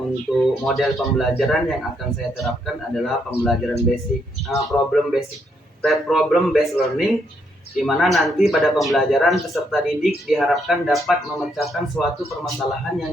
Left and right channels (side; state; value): both; normal; correlation 0.75